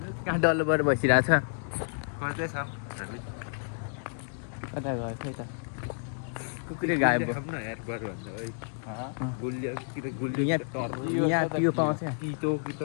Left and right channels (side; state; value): right; silent; digital silence